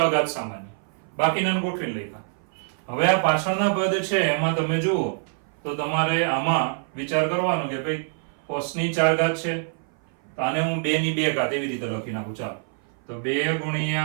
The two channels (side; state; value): left; silent; 58 dB below the other